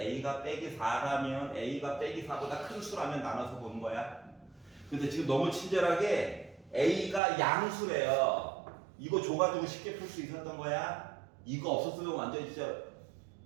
빼기 4라면 a가 빼기 4보다 큰 수라면 나눠서 보는 거야. 근데 지금 너무 친절하게 a가 양수래요. 이거 줘가지고 쉽게 풀 수 있었던 거야. 이거 없었으면 완전히 진짜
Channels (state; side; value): drops out; left; at 7.2 s